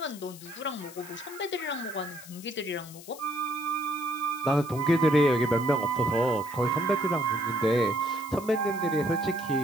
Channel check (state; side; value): noise; left; hiss, 17 dB below the sound